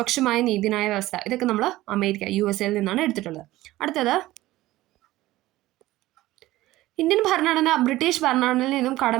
നീതിന്യായ വ്യവസ്ഥ ഇതൊക്കെ നമ്മൾ USA നിന്നാണ് എടുത്തിട്ടുള്ളത്. അടുത്തത് ഇന്ത്യൻ ഭരണഘടന ബ്രിട്ടീഷ് ഭരണഘടനയിൽ നിന്നും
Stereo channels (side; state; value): left; quieter; 16.8 dB